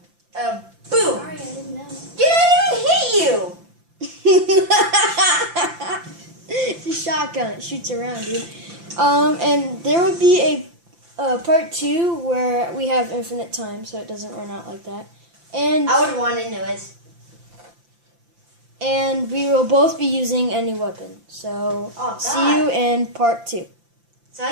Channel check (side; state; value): left; late; 5.8 ms